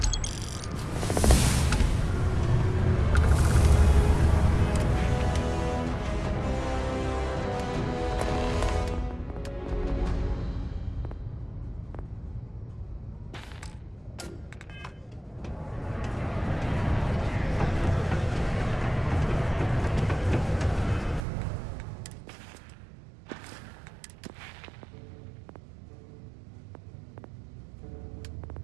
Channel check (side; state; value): left; drops out; at 21.2 s